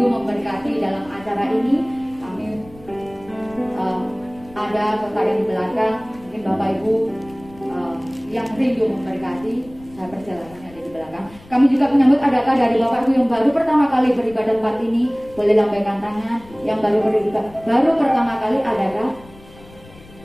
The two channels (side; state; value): left; noise; rumble, 22 dB below the sound